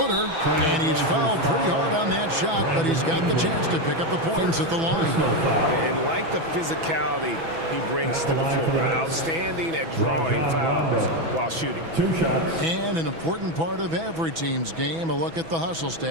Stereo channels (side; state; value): left; late; 6.1 ms